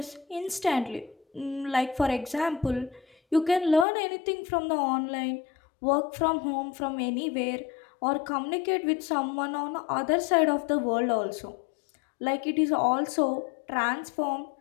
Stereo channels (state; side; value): drops out; right; at 3.9 s